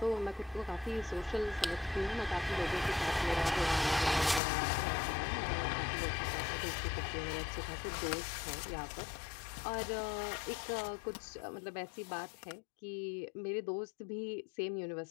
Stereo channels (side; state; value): right; drops out; at 4.4 s